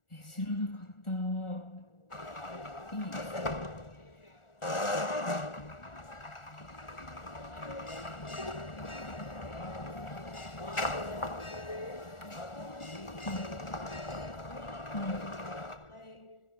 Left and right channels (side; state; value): right; late; 1.4 ms